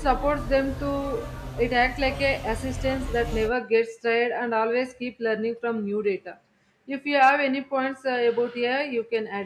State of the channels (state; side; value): identical; both; correlation 1.00